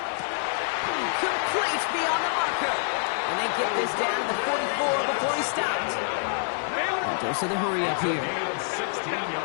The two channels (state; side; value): silent; right; digital silence